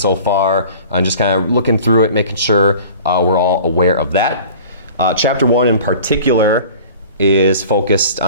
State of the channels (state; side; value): inverted; both; correlation -0.44